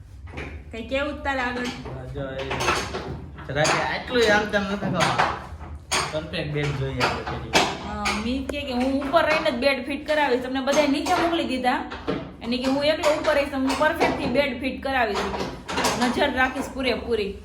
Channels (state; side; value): identical; both; correlation 1.00